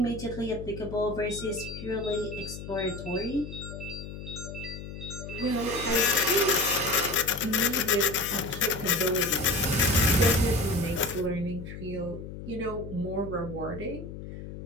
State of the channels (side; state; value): left; noise; hum, 10 dB below the sound